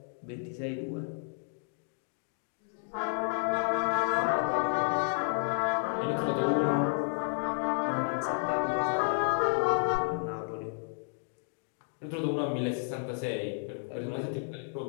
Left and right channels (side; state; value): right; silent; 57 dB below the other